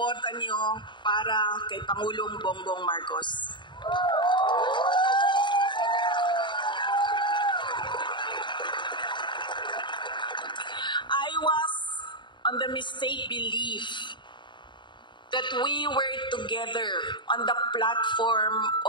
niyo para kay Pangulong Bongbong Marcos. I was on the mistaken belief that we were together on the platform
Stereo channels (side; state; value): right; late; 0.23 ms